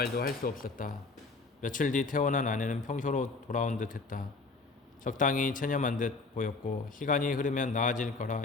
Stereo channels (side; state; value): right; quieter; 4.0 dB